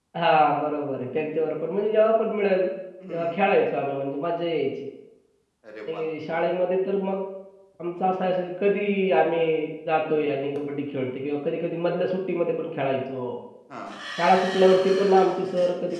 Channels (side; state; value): both; identical; correlation 1.00